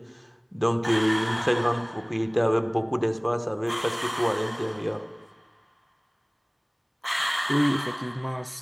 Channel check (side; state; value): both; identical; correlation 1.00